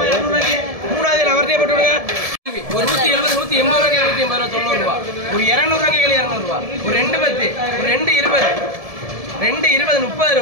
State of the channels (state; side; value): late; left; 1.7 ms